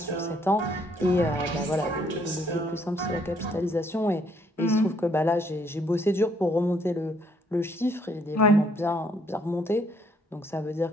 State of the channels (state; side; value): normal; both; correlation 0.67